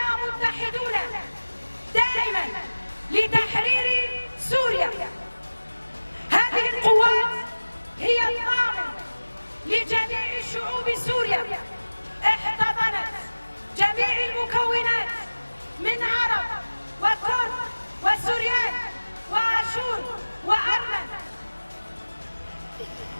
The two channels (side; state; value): both; inverted; correlation -1.00